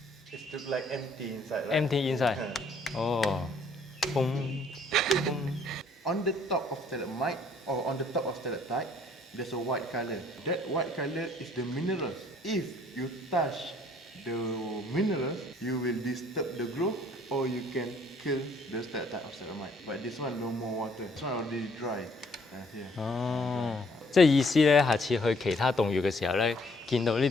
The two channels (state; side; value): normal; both; correlation 0.63